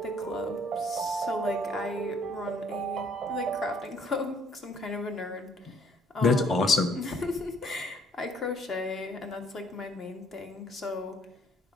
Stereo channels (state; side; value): normal; both; correlation 0.62